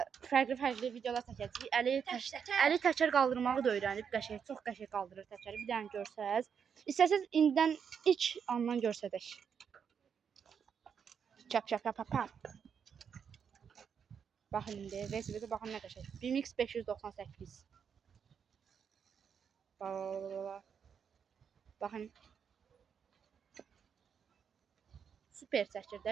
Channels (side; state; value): left; quieter; 7.1 dB